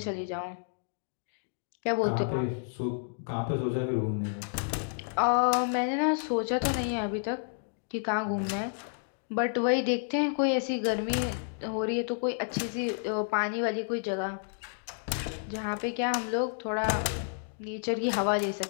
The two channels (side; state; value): right; silent; digital silence